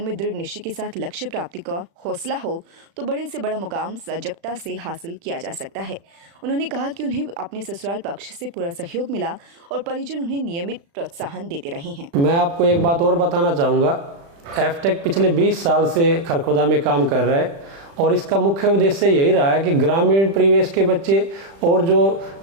में दृढ़ निश्चय के साथ लक्ष्य प्राप्ति का हौसला हो तो बड़े से बड़ा मुकाम सजगता से हासिल किया जा सकता है। उन्होंने कहा कि उन्हें अपने ससुराल पक्ष से पूरा सहयोग मिला और परिजन उन्हें नियमित प्रोत्साहन देते रहे हैं। मैं आपको एक बात और बताना चाहूँगा। एफटेक पिछले 20 साल से खरखोदा में काम कर रहा है और इसका मुख्य उद्देश्य यही रहा है कि ग्रामीण परिवेश के बच्चे और जो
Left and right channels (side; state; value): left; late; 36 ms